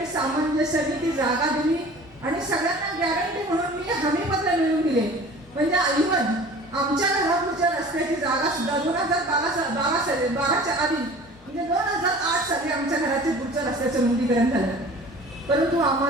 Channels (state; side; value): normal; both; correlation 0.43